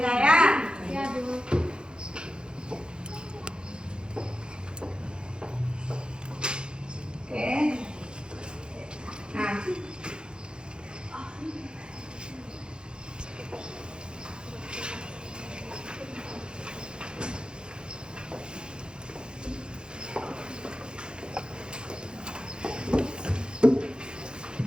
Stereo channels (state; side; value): late; left; 0.049 ms